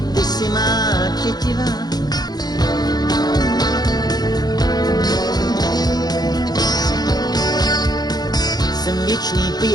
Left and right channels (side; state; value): right; late; 0.19 ms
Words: ty si má tětivá. Jsem věčný